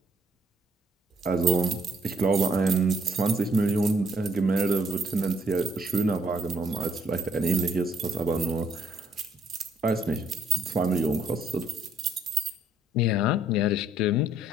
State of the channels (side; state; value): both; normal; correlation 0.68